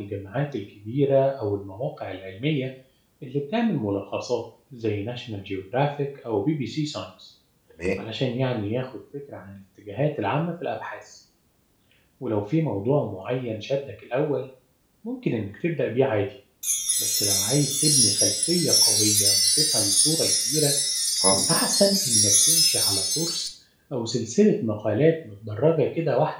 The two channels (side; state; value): both; identical; correlation 1.00